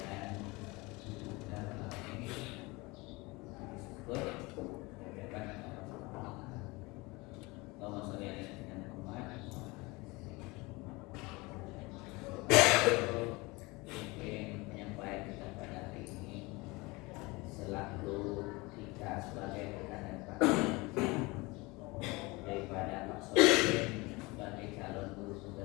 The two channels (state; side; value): quieter; right; 24.1 dB